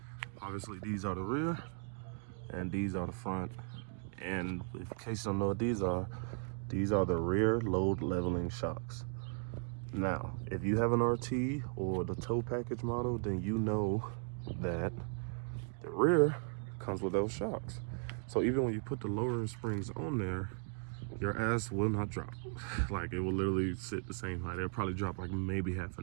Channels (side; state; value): left; silent; 53 dB below the other